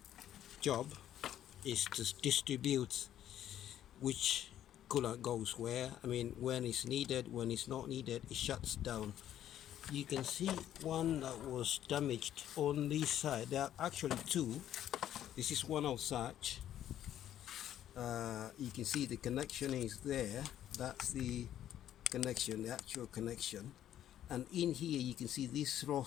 job is to distribute which coolant goes where. I mean, when it's needed, when it's not needed, it shuts down. You can see one that was damaged on this side. There are actually two. This is one of such. You can see the connection is there. That's the connection, the actual connection. And in here you can see this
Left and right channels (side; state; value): right; quieter; 11.3 dB